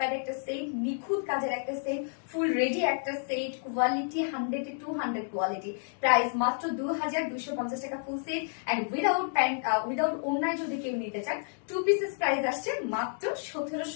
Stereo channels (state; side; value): silent; right; digital silence